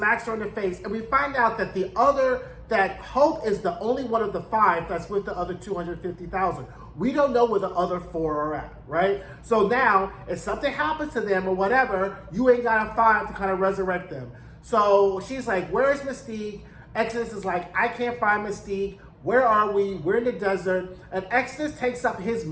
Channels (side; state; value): both; identical; correlation 1.00